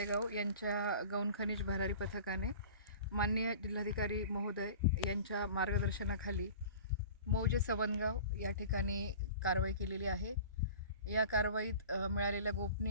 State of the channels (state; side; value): inverted; both; correlation -0.41